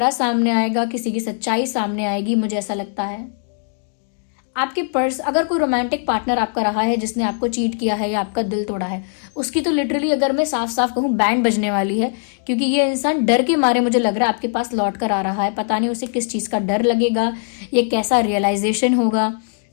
सामने आएगा, किसी की सच्चाई सामने आएगी, मुझे ऐसा लगता है। आपके अगर कोई रोमांटिक पार्टनर आपका रहा है जिसने आपको चीट किया है या आपका दिल तोड़ा है, उसकी तो लिटरली अगर मैं साफ साफ कहूँ बैंड बजने वाली है, क्योंकि ये इंसान डर के मारे मुझे लग रहा है आपके पास लौट कर आ रहा है। पता नहीं उसे किस चीज का डर लगेगा, ये कैसा रियलाइजेशन होगा।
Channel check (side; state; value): right; silent; digital silence